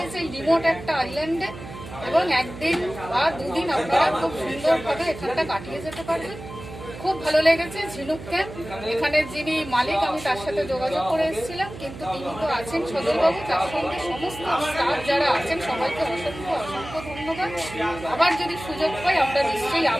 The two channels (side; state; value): right; noise; hum, 13 dB below the sound